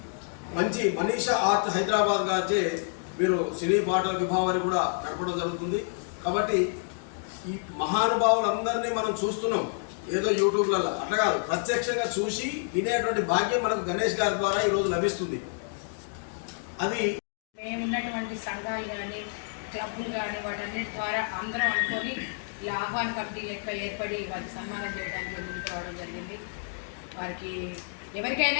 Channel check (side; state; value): right; silent; digital silence